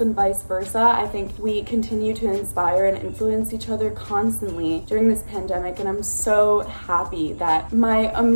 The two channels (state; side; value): inverted; both; correlation -1.00